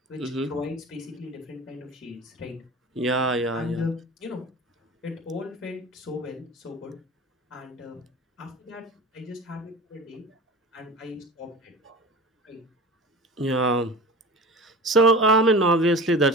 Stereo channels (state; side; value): normal; both; correlation 0.35